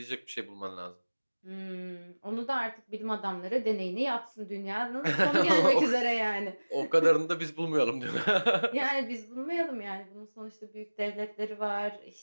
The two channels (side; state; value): both; inverted; correlation -1.00